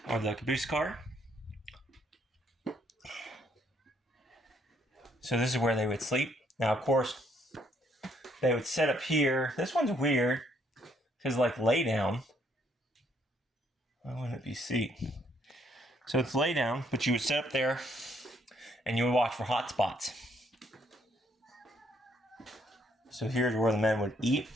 of the caboose car. So this is where they would sleep. Now, of course, they would sit up here. This one's weird because, like, lay down. Why wouldn't it be seat? So it's lay down, but you would sit up there and you would watch for hot spots. So here's where the men would eat.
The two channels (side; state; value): both; normal; correlation 0.70